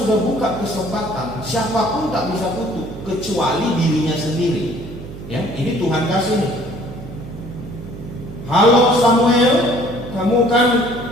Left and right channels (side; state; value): right; noise; hum, 13 dB below the sound